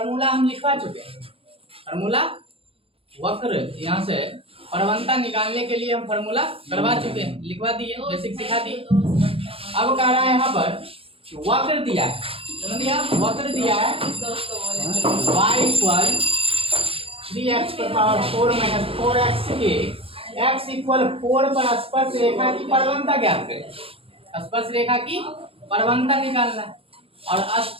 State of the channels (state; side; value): late; left; 0.27 ms